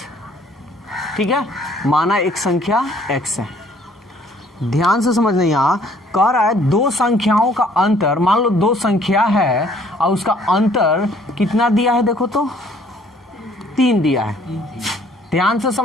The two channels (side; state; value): both; normal; correlation 0.60